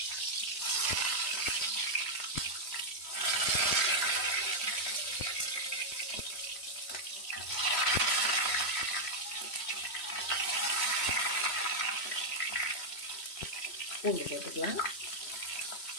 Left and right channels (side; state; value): right; late; 3.1 ms